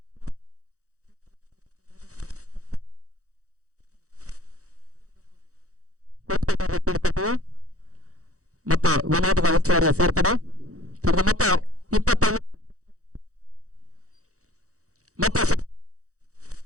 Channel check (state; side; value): late; left; 0.65 ms